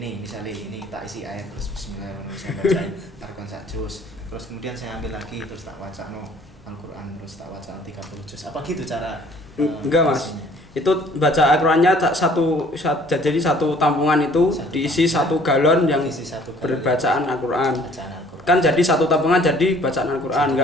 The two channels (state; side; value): normal; both; correlation 0.56